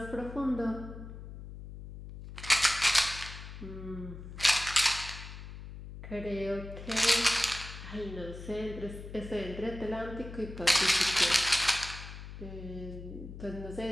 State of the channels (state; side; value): noise; left; hum, 12 dB below the sound